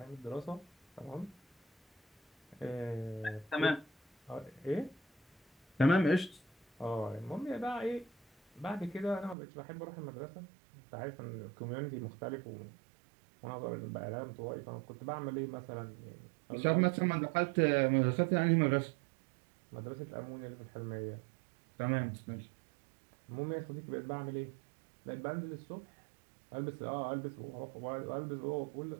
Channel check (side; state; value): left; drops out; at 9.3 s